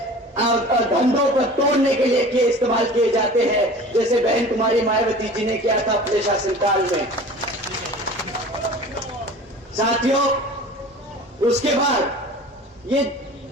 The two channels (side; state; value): both; normal; correlation 0.41